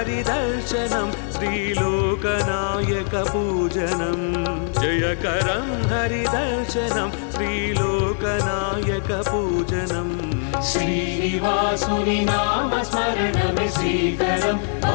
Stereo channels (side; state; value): right; silent; 64 dB below the other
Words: श्रीलोकनायकपूजनं जयकरं हरिदर्शनं श्रीलोकनायकपूजनं श्रीनिवासुनि नाम स्मरणमे श्रीकरं